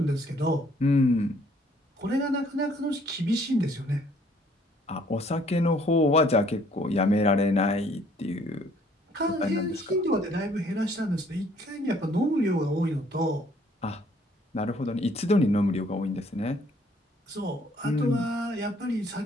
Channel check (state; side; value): normal; both; correlation 0.61